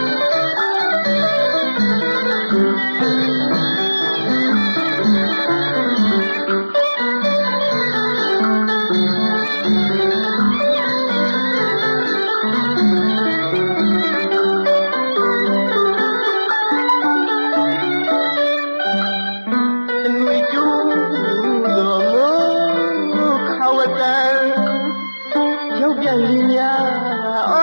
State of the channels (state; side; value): inverted; both; correlation -1.00